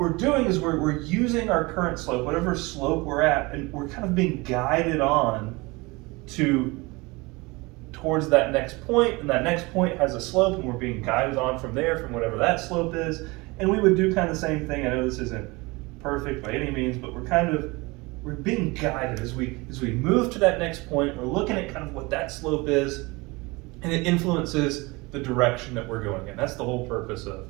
doing is we're using our current slope, whatever slope we're at, and we're kind of being guided on towards that next point, and that next point has a slope, and we're being guided on from there, from whatever that slope is. And we would do kind of the same thing. I know this isn't perfect by any means, but we're being guided as we move to that next point. We're looking at kind of what that slope is, and it influences the direction that we're going in. That's the whole purpose of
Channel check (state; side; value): quieter; left; 24.4 dB